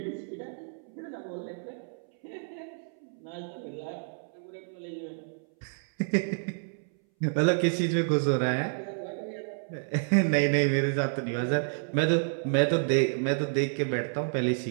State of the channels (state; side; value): silent; left; 58 dB below the other